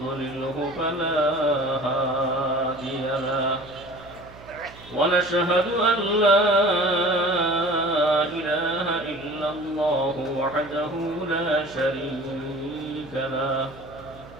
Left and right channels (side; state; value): right; noise; hum, 20 dB below the sound